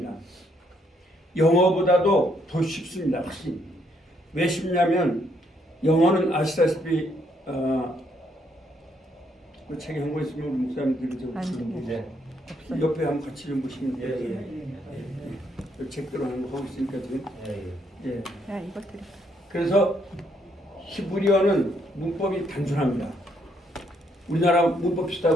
영어보다도 더 쉽습니다. 훨씬. 왜 쉽냐면 영어는 아시다시피 그 책에 한거 있으면 우리 목사님들이 좀 옆에 한번 같이 좀 보시면 돼요. 책들로 하는 거 하고 있으니까 지금. 예. 그래서 히브리어는 문법이 단순합니다. 우리나라 문법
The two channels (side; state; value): both; normal; correlation 0.72